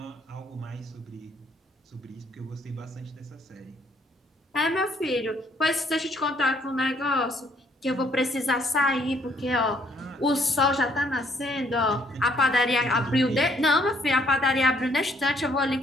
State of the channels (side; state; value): both; normal; correlation 0.66